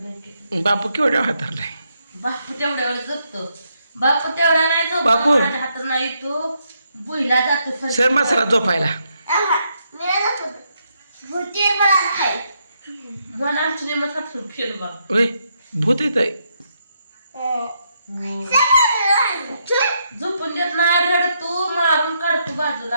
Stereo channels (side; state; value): both; inverted; correlation -0.78